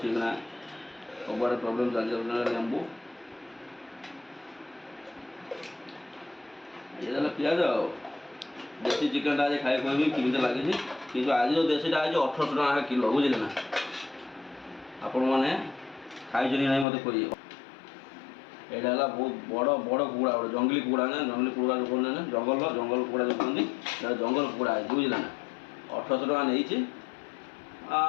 ନା ସବୁଆଡ଼େ ପ୍ରୋବ୍ଲେମ୍ ଚାଲିଛି ଲେମ୍ବୁ ଇଏ ଦେଲା ପିଆଜ ଆଉ ଦେଶୀ ଚିକେନ୍ଟା ଆଜି ଖାଇ କହିବି କେମିତି ଲାଗିଛି କିନ୍ତୁ ଆଜି ଯେଉଁ ଦେଶୀଟା ଆଜି 1800 ଟଙ୍କା କିଲୋ ବୁଝିଲେ ନା ଆପଣମାନେ ଖାଇଛନ୍ତି ନାହିଁ ମୋତେ କହିବେ। ଏଇଟା ହେଲା ବହୁତ ବଡ଼ ବଡ଼ କୁକୁଡ଼ା ଗୋଟେ ଜଙ୍ଗଲି କୁକୁଡ଼ା ନା ଜଙ୍ଗଲି କୁକୁଡ଼ା ଯେଉଁ କୁହନ୍ତି ନା ଜଙ୍ଗଲ କୁକୁଡ଼ା ଯେଉଁ କୁହନ୍ତି ଏଇଟା ଜଙ୍ଗଲ କୁକୁଡ଼ା ହେଇଛି ବୁଝିଲେ ନା 1800 ଟଙ୍କା ନେଇଛି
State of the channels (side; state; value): right; drops out; at 16.9 s